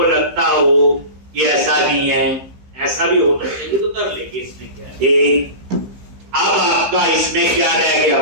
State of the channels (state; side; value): late; left; 15 ms